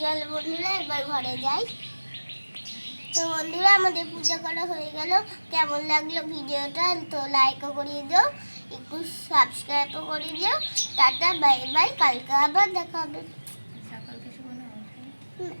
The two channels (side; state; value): both; inverted; correlation -1.00